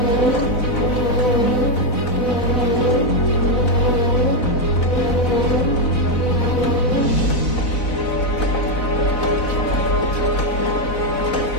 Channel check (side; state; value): right; late; 4.0 ms